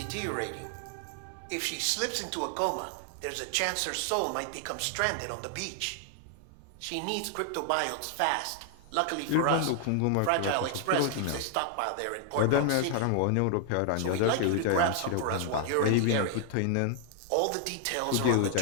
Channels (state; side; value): different; both; correlation 0.00